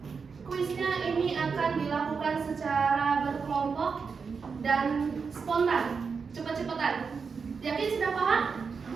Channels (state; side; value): quieter; left; 5.4 dB